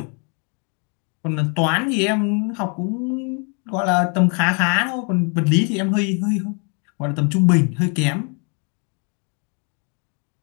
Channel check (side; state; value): right; quieter; 37.5 dB